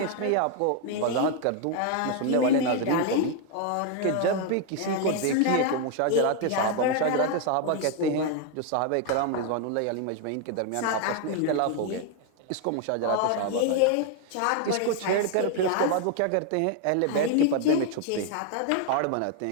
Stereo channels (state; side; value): different; both; correlation 0.01